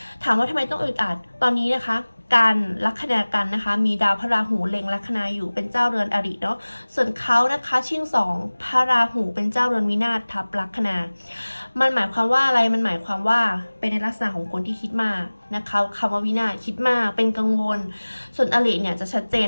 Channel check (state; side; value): inverted; both; correlation -1.00